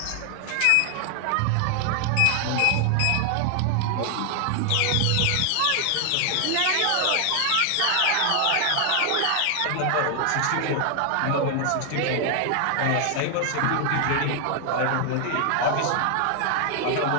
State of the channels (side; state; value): both; different; correlation 0.00